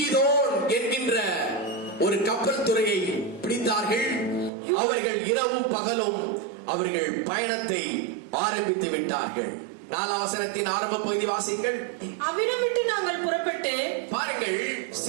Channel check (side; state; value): left; drops out; at 4.5 s